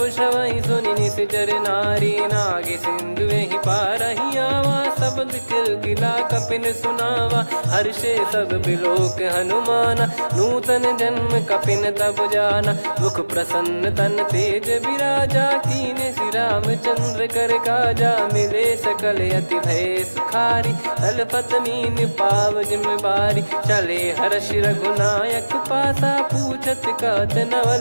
श्रवहि सुनि निश्चर नारी, नागे सिंधु ही पारहि आवा, शब्द किलकिला कपिन सुनावा, हर्षे सब बिलोक हनुमाना, नूतन जन्म कपिन तब जाना, मुख प्रसन्न तन तेज विराजा, कीने श्री रामचंद्र कर काजा, मिले सकल अति भय सुखारी, तलपत मीन पाव जिम बारी, चले हर्ष रघुनायक पासा, पूछत कहत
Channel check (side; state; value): both; inverted; correlation -1.00